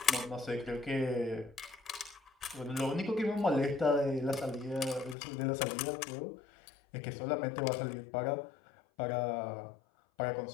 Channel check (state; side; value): drops out; right; at 5.2 s